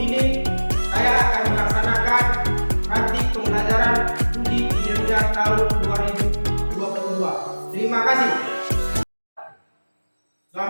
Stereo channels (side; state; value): both; inverted; correlation -1.00